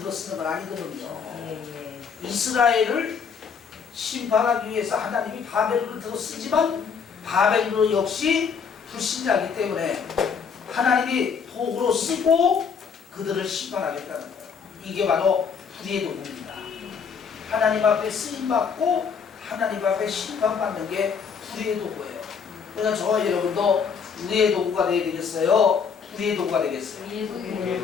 건 아니거든요. 이스라엘을 심판하기 위해서 하나님이 바벨론을 들어쓰지만 바벨론 역시 불신자이기 때문에 하나님이 도구로 쓰고 그들을 심판하겠다는 거예요. 이게 바로 불의의 도구입니다. 하나님 앞에 쓰임받고 하나님 앞에 심판받는 게 불의의 도구예요. 그러니까 저와 여러분도 의의 도구가 되어야 되겠어요? 불의의 도구가 되겠어요?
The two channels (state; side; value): quieter; right; 6.3 dB